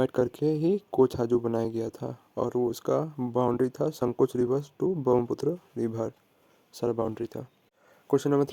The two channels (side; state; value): both; identical; correlation 1.00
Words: करके ही कोछाजू बनाया गया था और वो उसका बाउंड्री था Sankosh river to Brahmaputra river, सारा बाउंड्री था। Question number